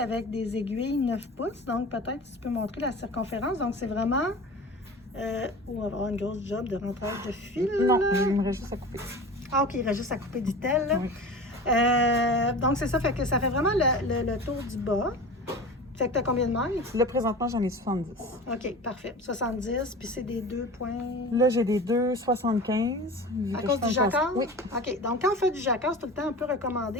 des aiguilles 9 pouces. Donc, peut-être tu peux montrer la circonférence. Donc, c'est vraiment... on va avoir une grosse job de rentrage de fil. Non, j'aimerais juste à couper. Ah, OK, il reste juste à couper du tel. Oui. Donc, c'est ça, fait que ça fait vraiment le tour du bas. Fait que tu as combien de mailles? Là, présentement, j'en ai 70. OK, parfait. 70, puis c'est des 2 points... Là, j'ai des 2,75. À cause du jacquard? Oui. OK. Donc, quand on fait du jacquard, c'est tout le temps un peu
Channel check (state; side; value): normal; both; correlation 0.34